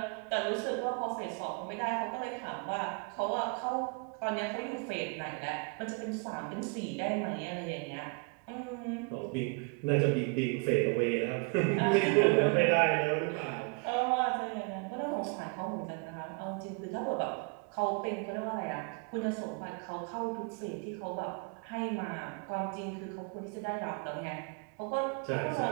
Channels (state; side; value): quieter; left; 33.1 dB